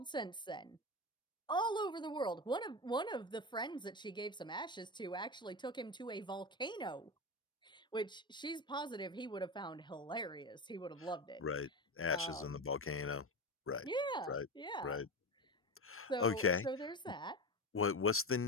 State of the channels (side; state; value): both; normal; correlation 0.21